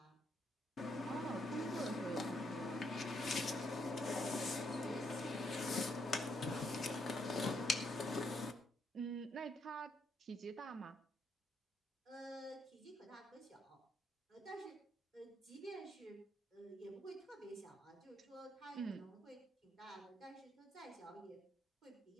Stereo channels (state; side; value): normal; both; correlation 0.75